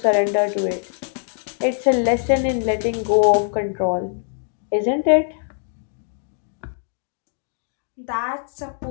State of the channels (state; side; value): silent; right; 64 dB below the other